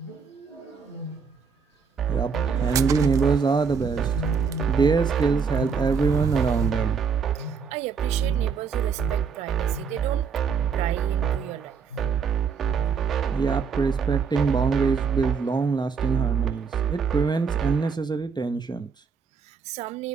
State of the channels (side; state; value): left; quieter; 5.8 dB